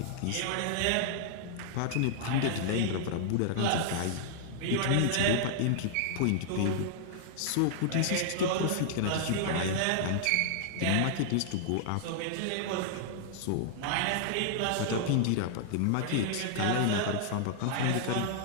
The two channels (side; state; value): both; different; correlation -0.01